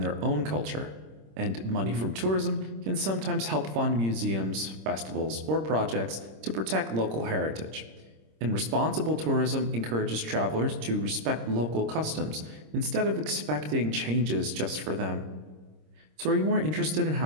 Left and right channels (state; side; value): late; left; 26 ms